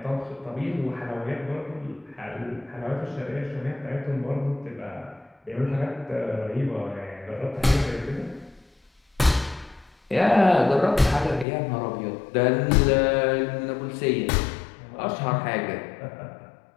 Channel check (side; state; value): right; drops out; at 11.5 s